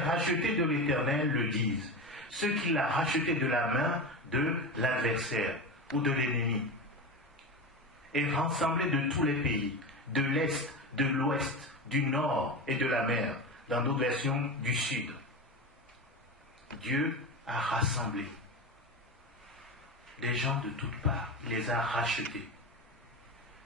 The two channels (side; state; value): both; normal; correlation 0.23